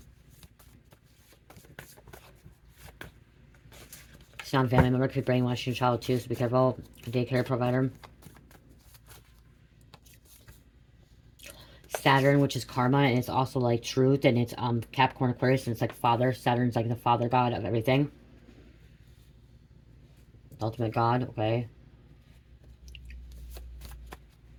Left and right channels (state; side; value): identical; both; correlation 1.00